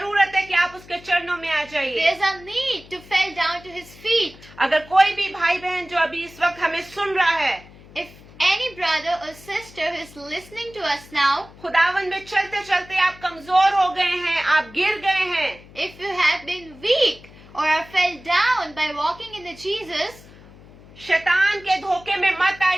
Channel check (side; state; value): left; noise; hum, 22 dB below the sound